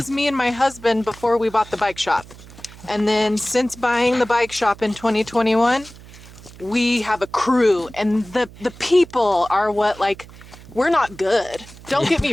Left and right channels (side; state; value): right; noise; hum, 19 dB below the sound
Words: me and my husband before we bought the bike shop. And then since buying the bike shop in 2021, we have a crew, and the people are what, like, we're not good. Don't get